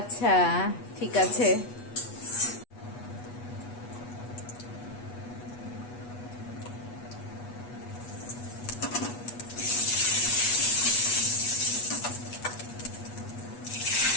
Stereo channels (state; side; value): late; right; 8.3 ms